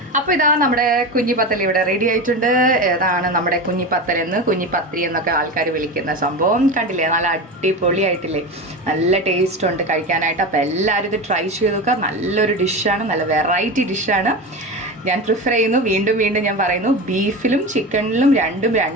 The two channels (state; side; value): normal; both; correlation 0.24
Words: അപ്പോൾ ഇതാ നമ്മുടെ കുഞ്ഞിപ്പത്തൽ ഇവിടെ റെഡി ആയിട്ടുണ്ട്. ഏതാണ് നമ്മുടെ കുഞ്ഞിപ്പത്തൽ എന്ന്, കുഞ്ഞിപ്പത്തിരി എന്നൊക്കെ ആൾക്കാർ വിളിക്കുന്ന സംഭവം. കണ്ടില്ലേ, നല്ല അടിപൊളിയായിട്ടില്ലേ, നല്ല ടേസ്റ്റ് ഉണ്ട് കഴിക്കാനായിട്ട്. അപ്പോൾ എല്ലാവരും ഇത് ട്രൈ ചെയ്ത് നോക്കുക. നല്ലൊരു ഡിഷാണ്, നല്ല വെറൈറ്റി ഡിഷാണ്. ഞാൻ പ്രിഫർ ചെയ്യുന്നു, വീണ്ടും വീണ്ടും ഞാൻ പറയുന്നു, ബീഫിലും ചിക്കനിലും രണ്ടും